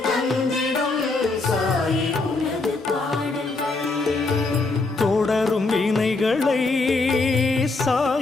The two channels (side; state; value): right; quieter; 3.5 dB